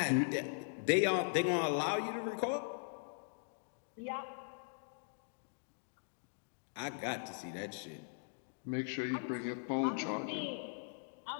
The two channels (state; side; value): silent; right; digital silence